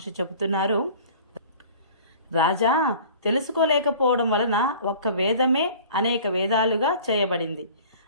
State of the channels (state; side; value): inverted; both; correlation -0.45